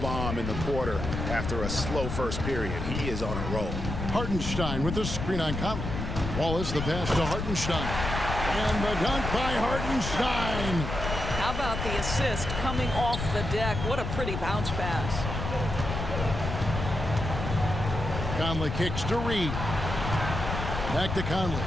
bomb in the quarter after a slow first period. He is on a roll. Hartenstein with the screen on Conley. Wallace the pass to Hartenstein. And the dunk by Hartenstein. How about the assist coming off the deck? What a pretty bounce pass. Conley kicks to Reed. Back to Conley.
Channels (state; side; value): noise; left; rumble, 4 dB below the sound